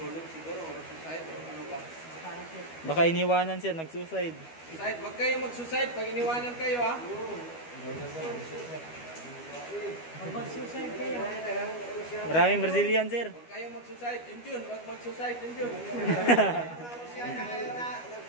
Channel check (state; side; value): late; right; 12 ms